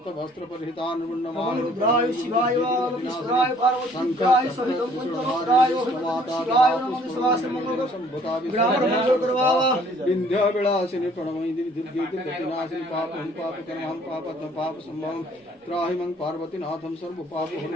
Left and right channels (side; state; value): both; normal; correlation 0.58